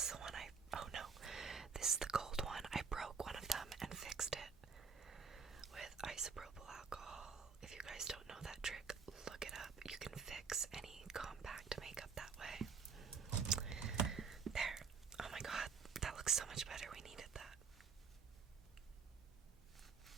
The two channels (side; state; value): left; quieter; 5.5 dB